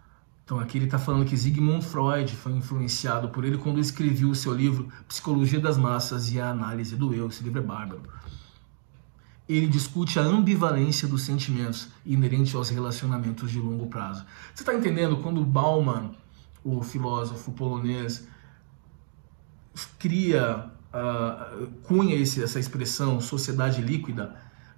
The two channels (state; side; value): silent; left; digital silence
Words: Então aqui ele está falando que Sigmund Freud foi influenciado por ele quando escreveu o seu livro Psicologia das Massas e a Análise do Eu. Esse livro é bárbaro. Ele discute a ambivalência dos sentimentos inerente aos relacionamentos de longo prazo. Você está entendendo quando Bauman, o filósofo polonês, cunha essa expressão sociedade líquida?